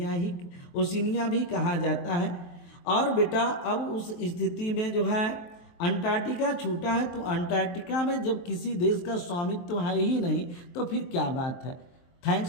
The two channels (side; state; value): right; late; 23 ms